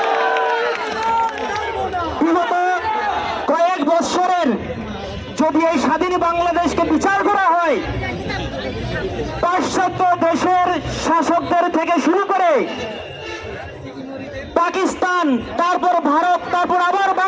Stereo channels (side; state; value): both; identical; correlation 1.00